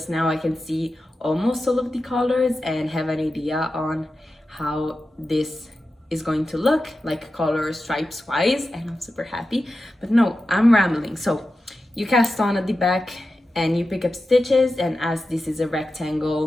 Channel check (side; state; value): both; normal; correlation 0.92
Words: now I can see almost all of the colors and have an idea on how this is going to look, like color stripes wise, and I'm super happy. But no, I'm rambling. So you cast on at the back and you pick up stitches, and as this is a